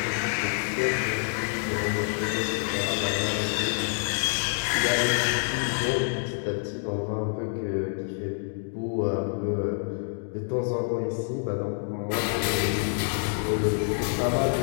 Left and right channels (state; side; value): silent; right; 60 dB below the other